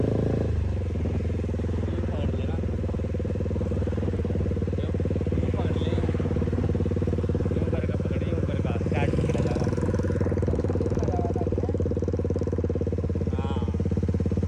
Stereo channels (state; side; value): identical; both; correlation 1.00